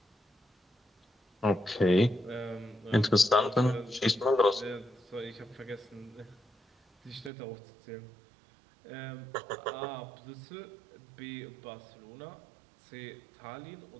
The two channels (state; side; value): drops out; left; at 7.3 s